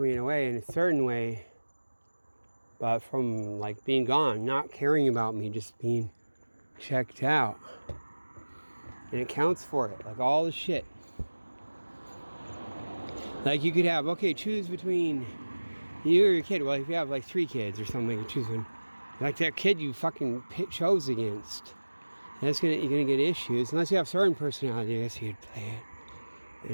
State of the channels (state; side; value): inverted; both; correlation -1.00